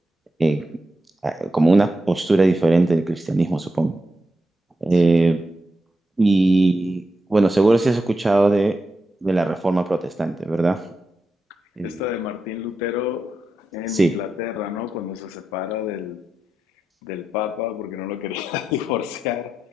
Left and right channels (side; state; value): both; normal; correlation 0.88